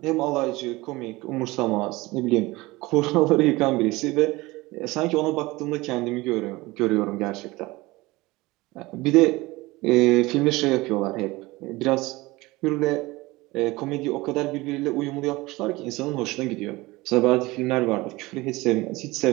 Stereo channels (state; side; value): quieter; left; 21.0 dB